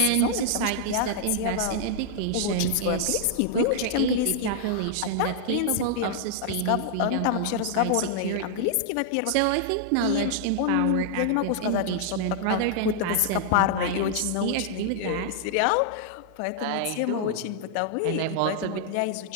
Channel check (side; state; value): both; different; correlation -0.01